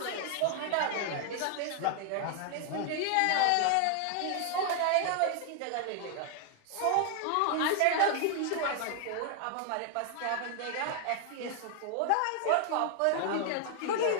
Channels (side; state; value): both; different; correlation 0.00